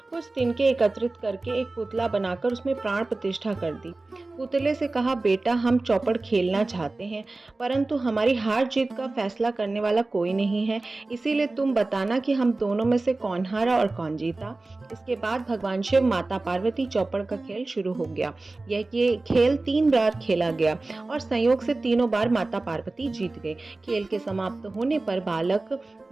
कुछ तिनके एकत्रित करके एक पुतला बनाकर उसमें प्राण प्रतिष्ठा कर दी। पुतले से कहा, बेटा हम चौपड़ खेलना चाहते हैं, परंतु हमारी हार जीत का फैसला करने वाला कोई नहीं है, इसीलिए तुम बताना कि हम दोनों में से कौन हारा और कौन जीता। इसके बाद भगवान शिव, माता पार्वती, चौपड़ का खेल शुरू हो गया। यह खेल 3 बार खेला गया और संयोग से तीनों बार माता पार्वती जीत गए। खेल के समाप्त होने पर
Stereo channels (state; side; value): quieter; left; 3.2 dB